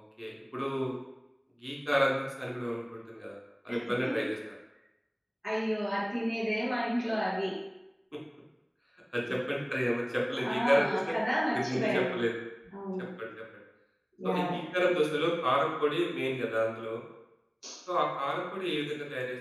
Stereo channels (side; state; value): both; identical; correlation 1.00